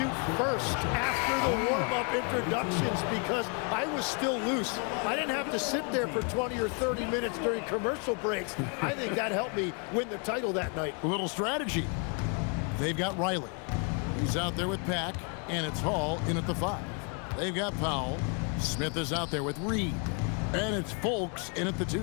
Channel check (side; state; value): right; quieter; 37.3 dB